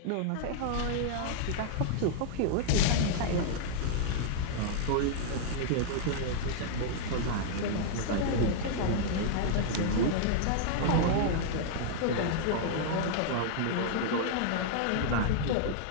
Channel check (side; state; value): both; different; correlation -0.01